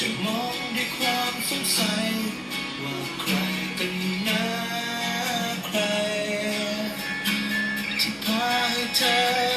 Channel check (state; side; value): identical; both; correlation 1.00